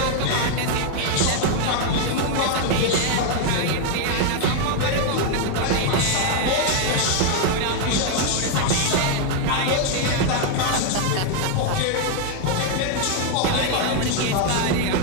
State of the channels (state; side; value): different; both; correlation 0.00